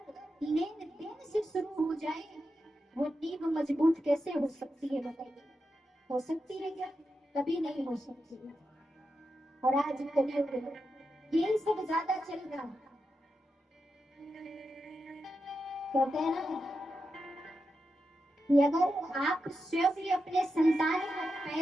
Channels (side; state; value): both; normal; correlation 0.88